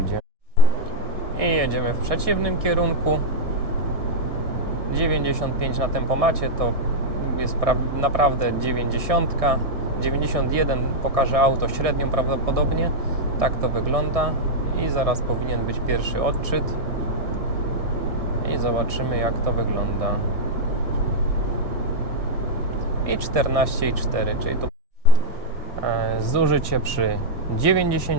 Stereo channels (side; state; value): left; late; 1.6 ms